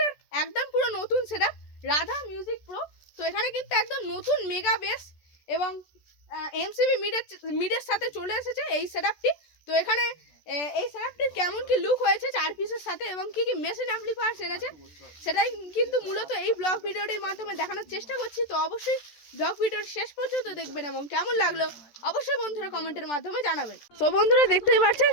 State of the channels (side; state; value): right; late; 14 ms